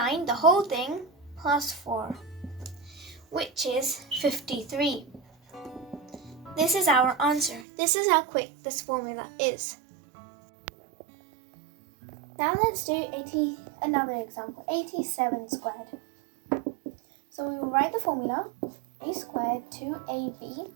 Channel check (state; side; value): drops out; left; at 7.7 s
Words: the whole thing, plus 4, which is 53. This is our answer. This is how quick this formula is. Now let's do another example, 87 squared. So we will write the formula, a squared 2ab